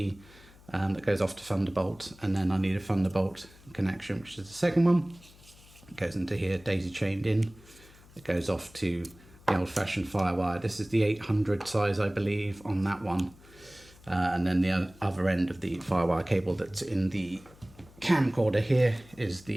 that goes off to Thunderbolt, and then I need a Thunderbolt connection, which is the second one. It goes into here, daisy chained in. It goes off to the old-fashioned FireWire. This is the 800 size, I believe, on that one. And then the other end of the FireWire cable that's in the camcorder here is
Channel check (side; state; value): left; noise; hum, 24 dB below the sound